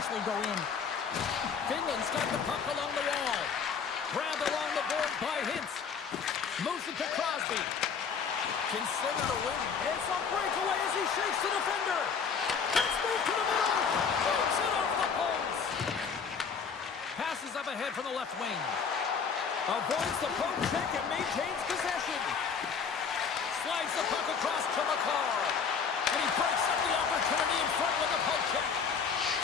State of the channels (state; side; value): quieter; right; 6.1 dB